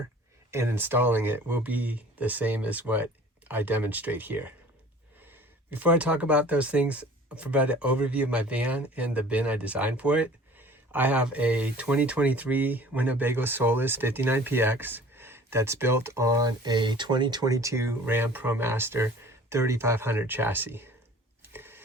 and installing it will be the same as what I demonstrate here. Before I talk about those things, I'll provide an overview of my van and the bin I designed for it. I have a 2023 Winnebago Solus 59PX that's built on a 2022 Ram Promaster 3500 chassis.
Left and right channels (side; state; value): both; normal; correlation 0.48